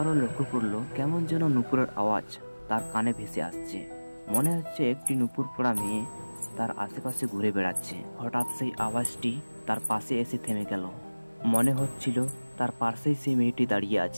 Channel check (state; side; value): inverted; both; correlation -1.00